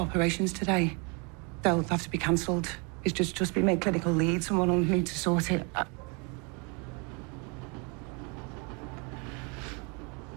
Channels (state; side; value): quieter; left; 32.7 dB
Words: today. They'll have to be cancelled. He's just been made clinical lead. Someone will need to sort it.